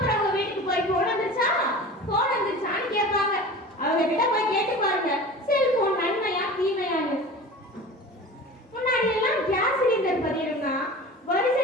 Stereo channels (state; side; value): normal; both; correlation 0.37